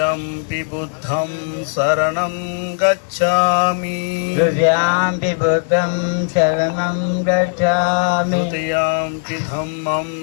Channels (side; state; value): right; silent; 59 dB below the other